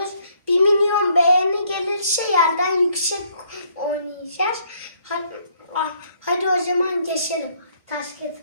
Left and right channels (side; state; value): both; inverted; correlation -0.67